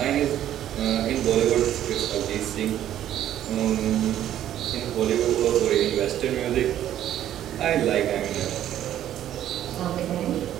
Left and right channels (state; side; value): quieter; left; 11.6 dB